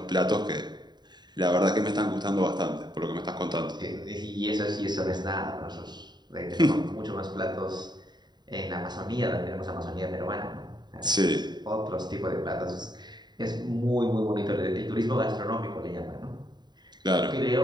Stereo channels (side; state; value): left; late; 0.21 ms